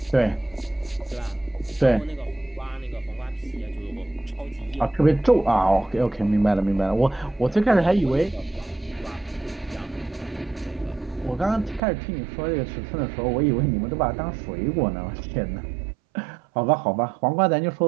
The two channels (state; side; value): drops out; left; at 11.8 s